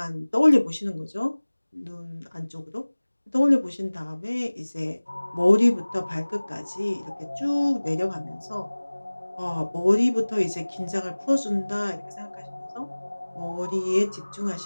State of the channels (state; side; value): inverted; both; correlation -1.00